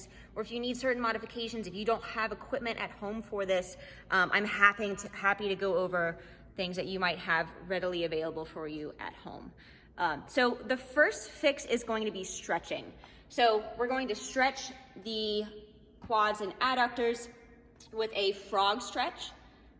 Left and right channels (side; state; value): both; identical; correlation 1.00